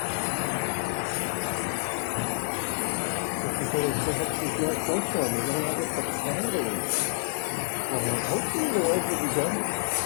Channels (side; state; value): right; silent; digital silence